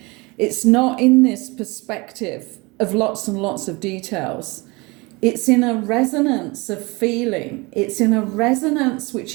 It's not in this perspective of lots and lots of details. It's in a resonance of feeling. It's in a resonance which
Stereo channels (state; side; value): quieter; left; 25.3 dB